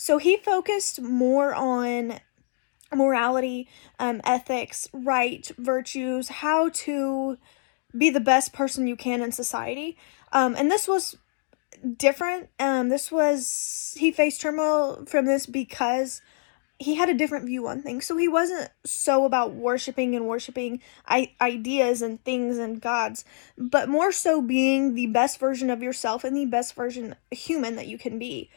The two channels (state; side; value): silent; right; digital silence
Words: he focused more on morality, ethics, right, virtues, how to be the best person you can in society. And this was different. He faced turmoil from this because he had a different view on things. So he wasn't so about worshiping ideas and things and gods, but more so being the best version of yourself and the best version human that you can be.